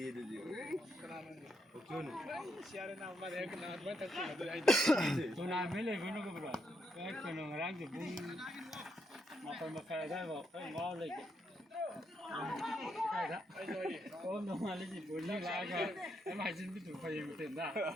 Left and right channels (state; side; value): normal; both; correlation 0.78